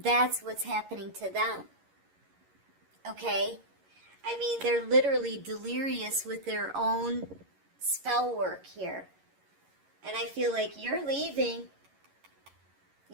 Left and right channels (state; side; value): late; left; 11 ms